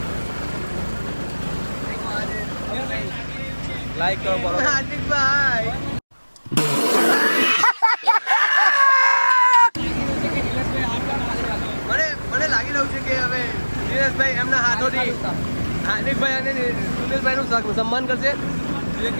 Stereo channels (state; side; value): inverted; both; correlation -1.00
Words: લાઈક કરો બરોબર હાર્દિકભાઈ. મને લાગી રહ્યું છે કે હવે નિલેશભાઈ એમના હાથોથી હાર્દિકભાઈ અને સુનિલભાઈનું સન્માન કરશે. જે